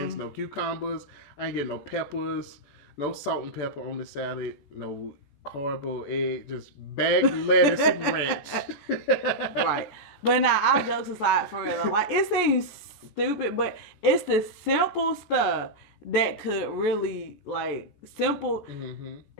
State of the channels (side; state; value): right; late; 14 ms